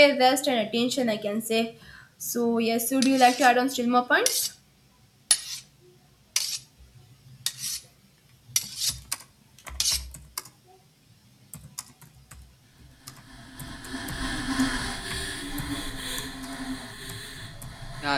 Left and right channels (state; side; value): identical; both; correlation 1.00